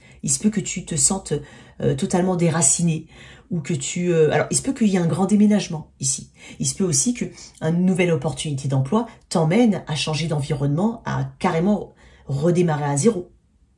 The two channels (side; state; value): both; identical; correlation 1.00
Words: Il se peut que tu te sentes totalement déraciné ou que tu... alors, il se peut qu'il y ait un grand déménagement ici. Il se peut aussi qu'une nouvelle opportunité d'emploi t'emmène à changer d'environnement, à carrément redémarrer à zéro.